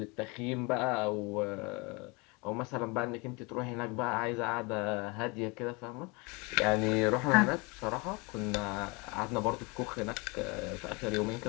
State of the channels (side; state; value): right; quieter; 28.1 dB